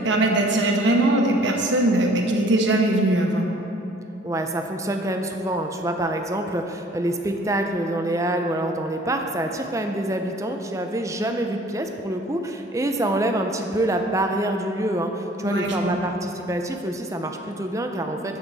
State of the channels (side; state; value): both; normal; correlation 0.54